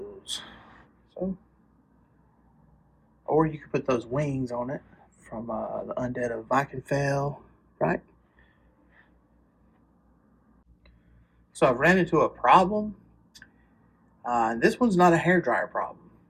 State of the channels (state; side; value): identical; both; correlation 1.00